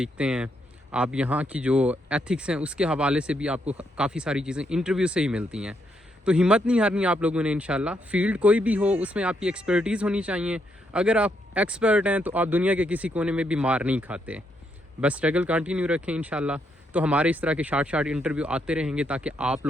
ہیں، آپ یہاں کی جو ایتھکس ہیں اس کے حوالے سے بھی آپ کو کافی ساری چیزیں انٹرویو سے ہی ملتی ہیں. تو ہمت نہیں ہارنی آپ لوگوں نے انشاءاللہ. فیلڈ کوئی بھی ہو اس میں آپ کی ایکسپرٹیز ہونی چاہیے. اگر آپ ایکسپرٹ ہیں تو آپ دنیا کے کسی کونے میں بھی مار نہیں کھاتے. بس اسٹرگل کنٹینیو رکھیں انشاءاللہ. تو ہمارے اس طرح کے شارٹ انٹرویو آتے رہیں گے تاکہ آپ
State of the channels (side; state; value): both; normal; correlation 0.77